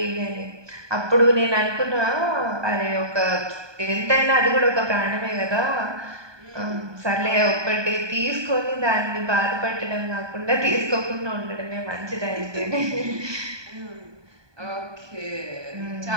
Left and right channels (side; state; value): left; late; 1.2 ms